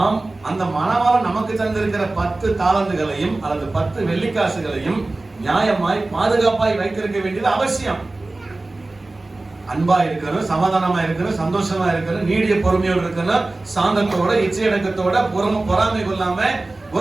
அந்த மணவாளன் நமக்கு தந்திருக்கிற 10 தாலந்துகளையும் அல்லது 10 வெள்ளிக்காசுகளையும் நியாயமாய் பாதுகாப்பாய் வைத்திருக்க வேண்டியது அவசியம். அன்பா இருக்கணும், சமாதானமா இருக்கணும், சந்தோஷமா இருக்கணும், நீடிய பொறுமையோடு இருக்கணும், சாந்தத்தோட இச்சையடக்கத்தோட பொறாமை கொள்ளாம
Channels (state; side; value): quieter; left; 3.0 dB